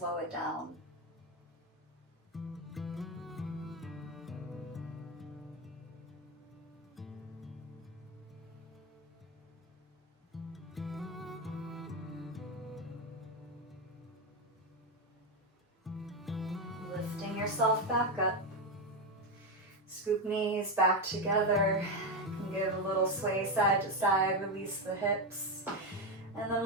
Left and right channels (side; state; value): both; normal; correlation 0.10